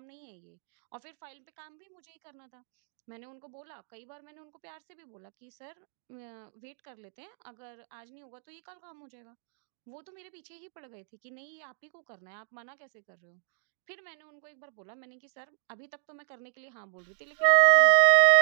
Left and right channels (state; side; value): silent; left; digital silence